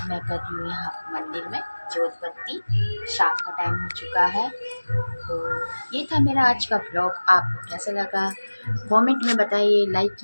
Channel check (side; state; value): both; inverted; correlation -1.00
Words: मैं कर रही हूँ यहाँ मंदिर में जोत बत्ती। शाम का टाइम हो चुका है। तो ये था मेरा आज का ब्लॉग। आपको कैसा लगा कमेंट में बताइए, लाइक